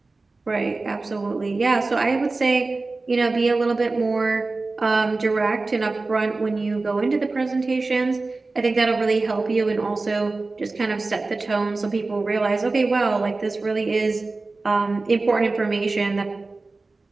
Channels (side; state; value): left; quieter; 3.5 dB